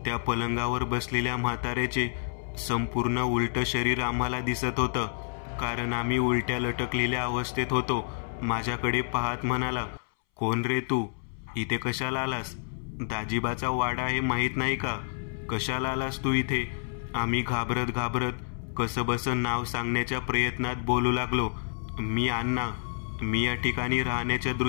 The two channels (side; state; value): right; silent; 59 dB below the other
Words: त्या पलंगावर बसलेल्या म्हाताऱ्याचे संपूर्ण उलटं शरीर आम्हाला दिसत होतं, कारण आम्ही उलट्या लटकलेल्या अवस्थेत होतो. माझ्याकडे पाहत म्हणाला, कोण रे तू, इथे कशाला आलास? दाजीबाचा वाडा आहे माहीत नाही का? कशाला आलास तू इथे? आम्ही घाबरत घाबरत कसंबसं नाव सांगण्याच्या प्रयत्नात बोलू लागलो. मी अण्णा, मी या ठिकाणी राहण्याच्या